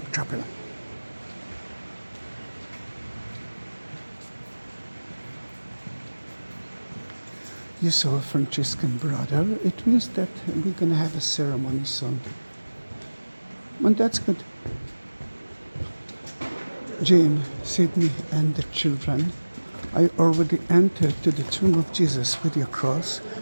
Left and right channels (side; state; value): both; inverted; correlation -1.00